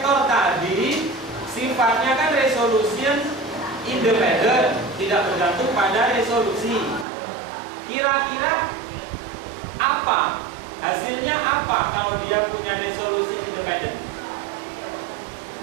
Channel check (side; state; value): left; drops out; at 7.1 s